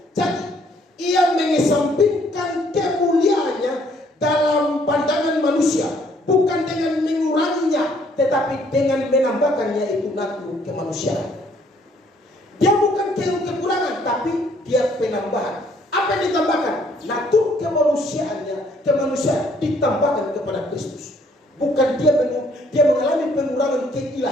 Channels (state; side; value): normal; both; correlation 0.64